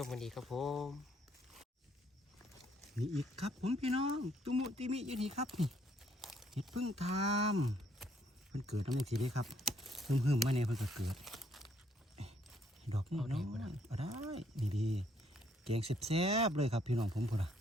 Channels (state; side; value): normal; both; correlation 0.68